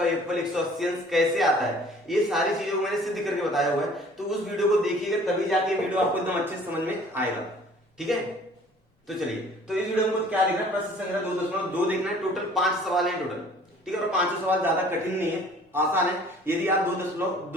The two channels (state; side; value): normal; both; correlation 0.52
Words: योगफल 180 अंश कैसे आता है, ये सारी चीजों को मैंने सिद्ध करके बताया हुआ है। तो उस वीडियो को देखिएगा तभी जाके वीडियो आपको एकदम अच्छे से समझ में आएगा। ठीक है, तो चलिए, तो इस वीडियो में क्या देखना है, प्रश्न संख्या 2.2 देखना है। टोटल 5 सवाल है टोटल। ठीक है, और 5 सवाल ज्यादा कठिन नहीं है, आसान है। यदि आप